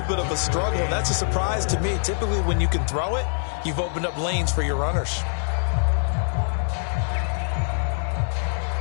bit of a struggle, and that's a surprise to me. Typically, when you can throw it, you've opened up lanes for your runners.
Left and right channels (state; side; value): silent; right; 62 dB below the other